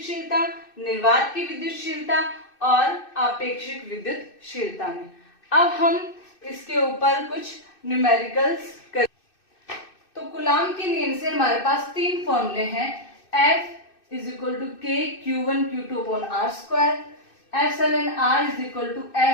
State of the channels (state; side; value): late; right; 2.6 ms